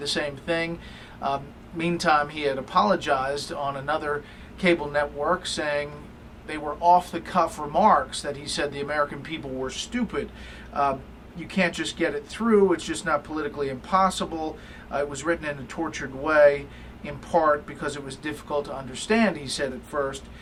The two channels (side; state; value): both; identical; correlation 1.00